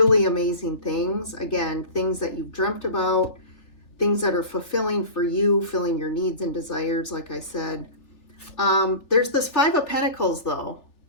amazing things. Again, things that you've dreamt about, things that are fulfilling for you, filling your needs and desires, like I said. There's this Five of Pentacles though.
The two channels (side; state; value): right; late; 3.4 ms